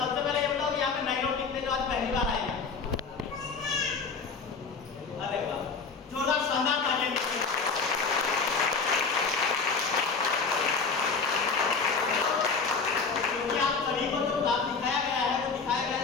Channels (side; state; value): right; quieter; 5.0 dB